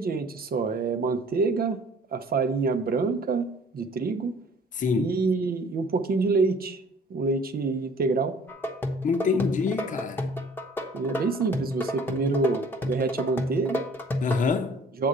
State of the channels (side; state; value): both; normal; correlation 0.53